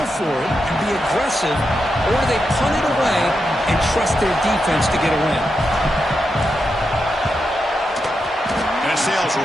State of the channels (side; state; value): both; normal; correlation 0.86